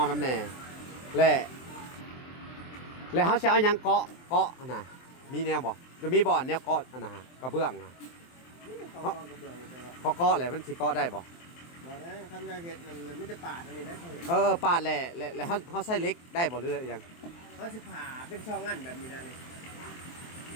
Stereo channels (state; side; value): late; right; 23 ms